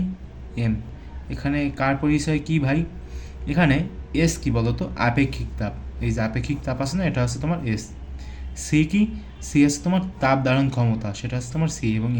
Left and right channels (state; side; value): identical; both; correlation 1.00